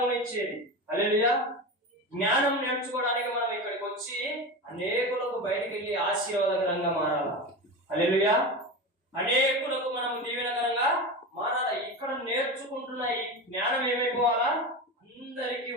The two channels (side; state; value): both; normal; correlation 0.24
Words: హల్లెలూయా. జ్ఞానం నేర్చుకోవడానికి మనం ఇక్కడికి వచ్చి అనేకులకు బయటికి వెళ్ళి ఆశీర్వాదకరంగా మారాలి. హల్లెలూయా. అనేకులకు మనం దీవెనకరంగా మారాలి. ఇక్కడ నేర్చుకుంటున్న ఈ జ్ఞానం ఏమైపోవాలా? అందరికీ